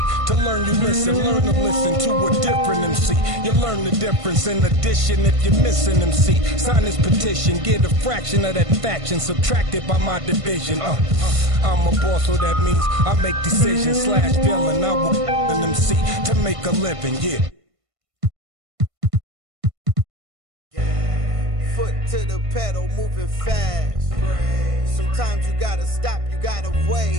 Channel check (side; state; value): left; late; 1.5 ms